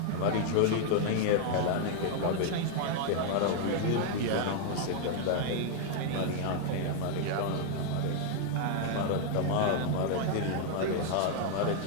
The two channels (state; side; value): different; both; correlation 0.00